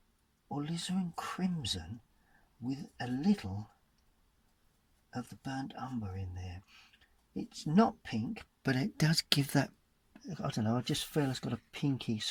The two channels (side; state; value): both; identical; correlation 1.00